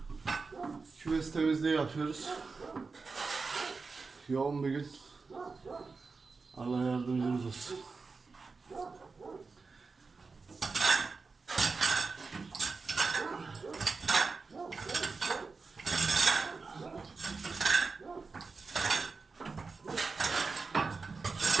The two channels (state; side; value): quieter; left; 4.4 dB